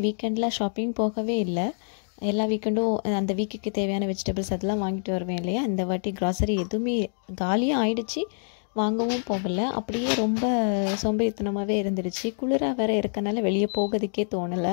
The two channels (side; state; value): right; silent; digital silence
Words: வீக்கெண்டில் ஷாப்பிங் போகவே இல்லை. எல்லா வீக்கெண்டும் அந்த வீக்குக்கு தேவையான வெஜிடபிள்ஸ் அதெல்லாம் வாங்கிட்டு வருவேன் இல்லையா. இந்த வாட்டி க்ராசரி எதுவுமே காலியாக ஆயிடுச்சு, வாங்கவும் போகலை. அப்படியே ரொம்ப சோம்பேறித்தனமாகவே இருந்துருச்சு. குளிராக வேறு இருக்கனால வெளியே போகிறதுக்கே